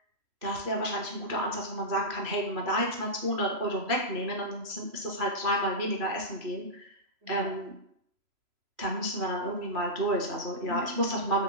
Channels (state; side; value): late; left; 3.0 ms